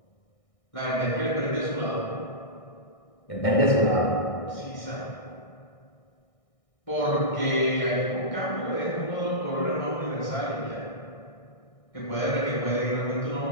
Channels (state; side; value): late; right; 1.6 ms